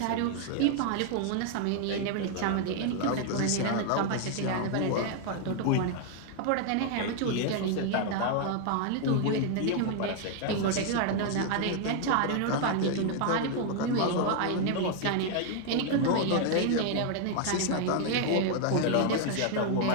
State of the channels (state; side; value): different; both; correlation 0.00